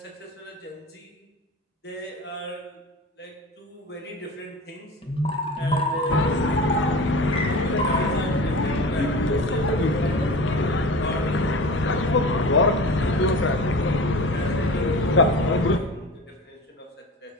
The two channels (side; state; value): both; normal; correlation 0.34